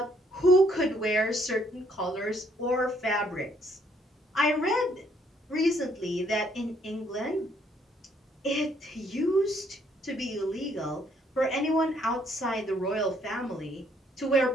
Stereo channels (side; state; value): both; normal; correlation 0.67